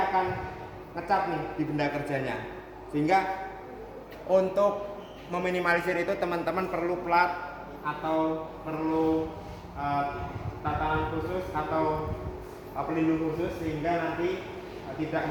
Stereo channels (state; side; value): identical; both; correlation 1.00